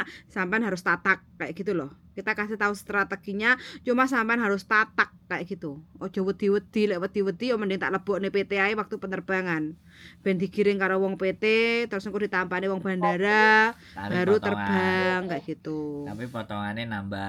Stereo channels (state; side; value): identical; both; correlation 1.00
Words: sampean harus tatak kayak gitu loh. Kita kasih tahu strateginya, cuma sampean harus tatak kayak gitu. Ojo wedi-wedi, lek wedi-wedi yo mending tak lebokne PT ae waktu penerbangan. Ben digiring karo wong PT, terus engko ditampani wong bandara, Tapi baru potongan. terbang kayak gitu. Tapi potongannya